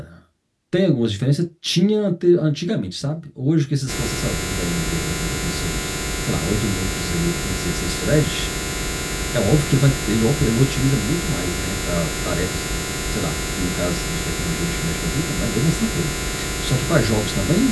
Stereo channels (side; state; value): both; identical; correlation 1.00